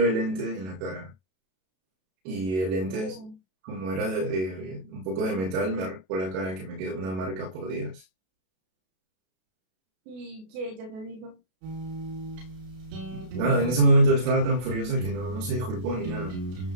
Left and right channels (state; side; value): late; left; 32 ms